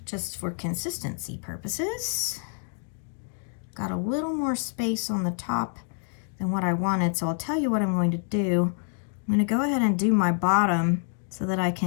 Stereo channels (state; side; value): silent; right; digital silence